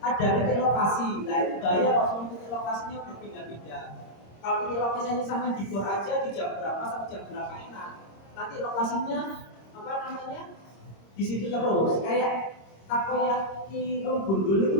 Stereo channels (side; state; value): right; late; 26 ms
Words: ada titik lokasi, nah itu bahaya kalau semua titik lokasinya berpindah-pindah. Kalau titik lokasinya sampai di bor aja, di jam berapa sampai jam berapa enak. Nanti lokasinya apa namanya di situ terus, kayak takoyaki gundul